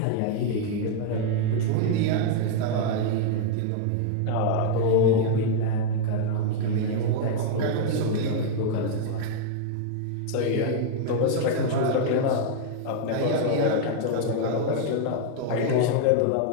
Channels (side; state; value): both; different; correlation -0.01